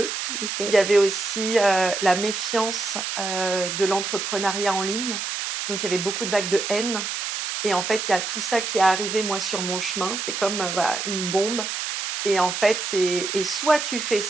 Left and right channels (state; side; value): noise; right; hiss, 3 dB below the sound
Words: Il OK, y avait aussi, la méfiance, de l'entrepreneuriat en ligne. Donc il y avait beaucoup de vagues de haine et en fait, il y a tout ça qui est arrivé, moi, sur mon chemin. C'était comme, voilà, une bombe et en fait, c'est et soit tu fais